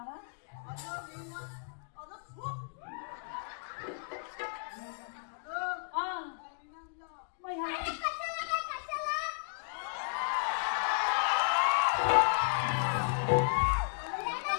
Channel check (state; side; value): silent; right; digital silence